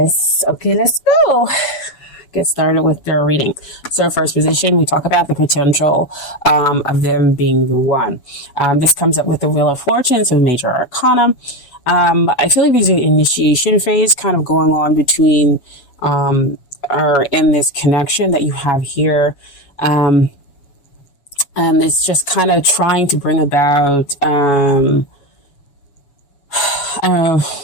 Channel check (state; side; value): late; right; 7.1 ms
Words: go. Get started with their reading. So first position, we talk about the potential of them being the one. This comes up with the Wheel of Fortune, so major arcana. I feel like there's an initiation phase kind of going on between or in this connection that you have here. And it's just kind of trying to bring about